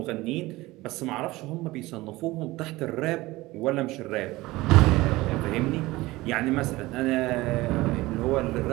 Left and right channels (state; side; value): quieter; left; 19.6 dB